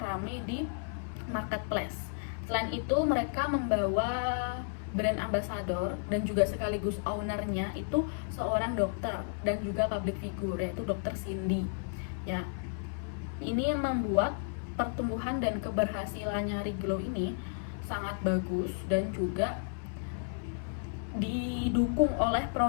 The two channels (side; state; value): right; silent; 56 dB below the other